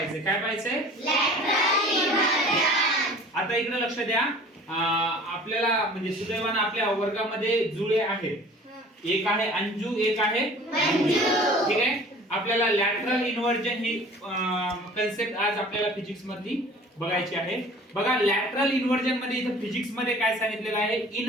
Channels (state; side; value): normal; both; correlation 0.46